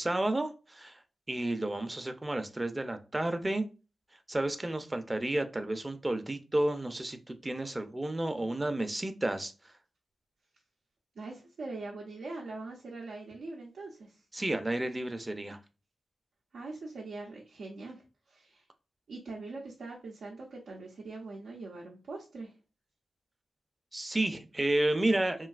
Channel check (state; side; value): normal; both; correlation 0.97